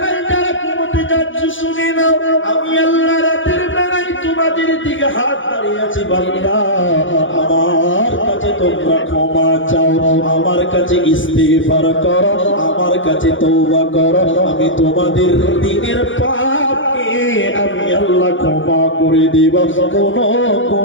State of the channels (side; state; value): right; late; 0.56 ms